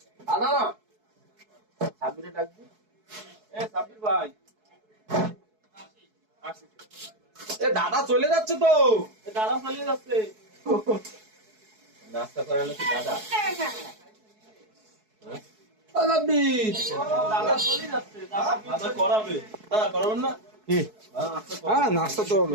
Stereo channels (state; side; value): late; left; 4.7 ms